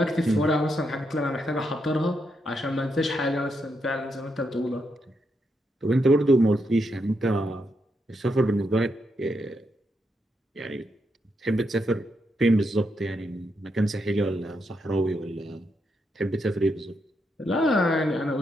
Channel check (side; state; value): both; normal; correlation 0.81